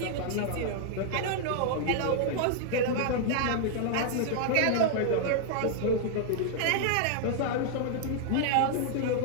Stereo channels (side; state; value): both; different; correlation -0.01